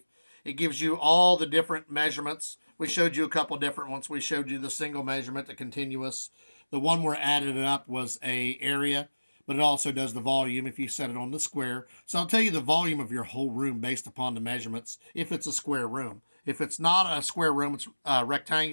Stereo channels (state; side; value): inverted; both; correlation -1.00